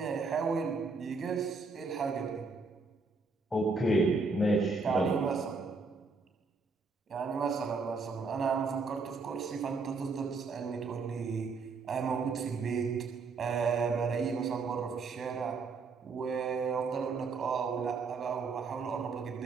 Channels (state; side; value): quieter; left; 4.3 dB